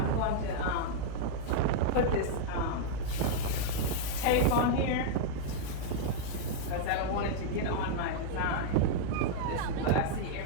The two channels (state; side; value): different; both; correlation -0.01